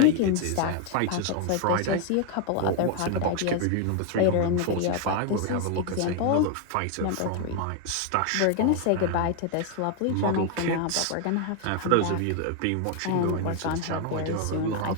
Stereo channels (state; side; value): different; both; correlation 0.00